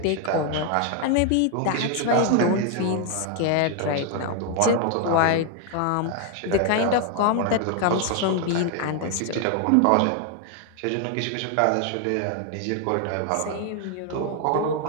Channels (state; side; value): different; both; correlation 0.01